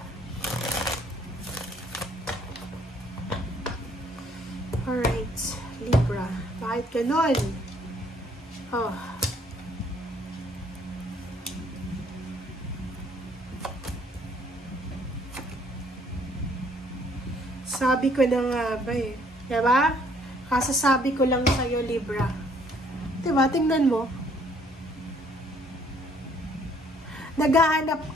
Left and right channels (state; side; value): normal; both; correlation 0.63